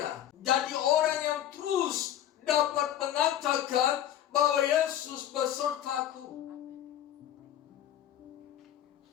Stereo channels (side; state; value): right; quieter; 11.4 dB